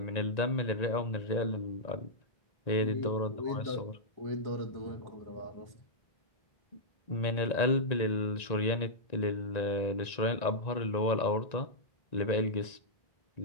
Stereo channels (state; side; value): late; right; 1.9 ms